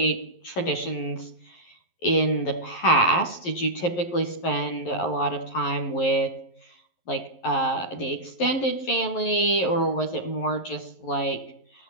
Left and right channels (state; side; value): late; right; 11 ms